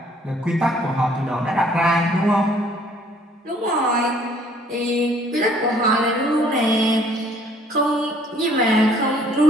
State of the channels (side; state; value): both; normal; correlation 0.60